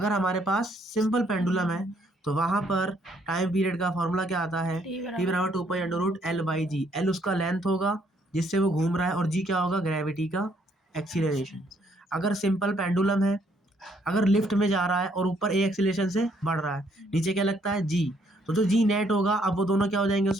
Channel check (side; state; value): both; normal; correlation 0.68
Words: हमारे पास सिंपल पेंडुलम है तो वहां पर टाइम पीरियड का फॉर्मूला क्या आता है टी बराबर 2 pi under root L by G. L उसका लेंथ होगा जिससे वो घूम रहा है, और जी क्या होगा ग्रेविटी का एक्सीलरेशन। अगर सिंपल पेंडुलम है, अगर लिफ्ट में जा रहा है और ऊपर ए एक्सीलरेशन से बढ़ रहा है, नीचे क्या लगता है जी, तो जो जी नेट होगा अब वो दोनों क्या हो जाएंगे